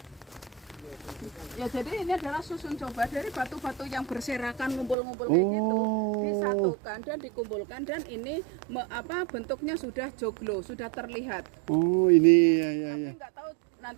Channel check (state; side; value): drops out; left; at 5.0 s